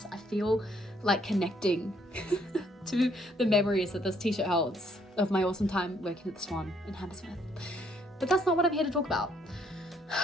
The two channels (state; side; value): normal; both; correlation 0.68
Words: I feel like connecting to the memories that this t-shirt holds of my awesome time working at the Swan in Hammersmith. But that's not what I'm here to talk about.